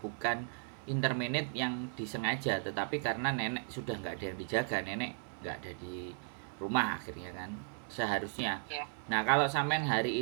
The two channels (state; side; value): silent; left; 54 dB below the other